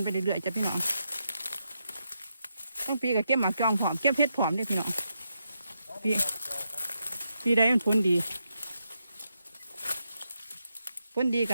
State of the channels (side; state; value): both; inverted; correlation -0.83